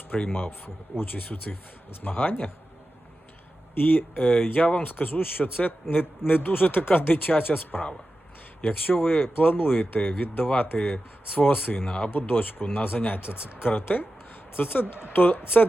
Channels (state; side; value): normal; both; correlation 0.93